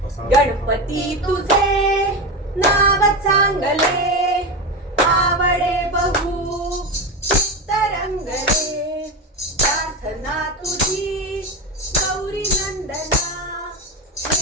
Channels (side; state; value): both; normal; correlation 0.19